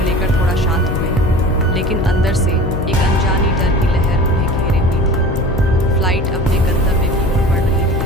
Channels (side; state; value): left; noise; hum, 6 dB below the sound